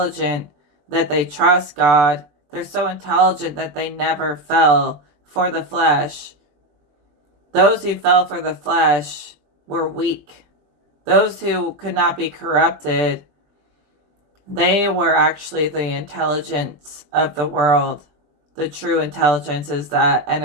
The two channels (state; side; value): late; left; 20 ms